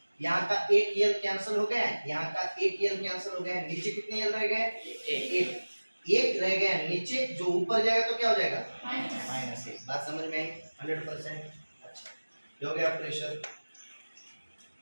यहाँ का एक l कैंसिल हो गया, यहाँ का एक l कैंसिल हो गया, नीचे कितने l रह गए, एक रह गया नीचे, जो ऊपर जाएगा तो क्या हो जाएगा, -1। बात समझ में आई 100%। अच्छा, ये हो गया प्रेशर।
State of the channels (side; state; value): both; inverted; correlation -1.00